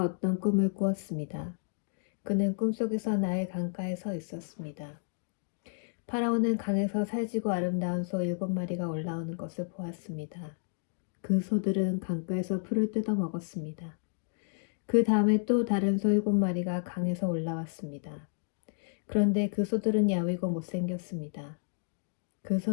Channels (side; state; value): right; silent; digital silence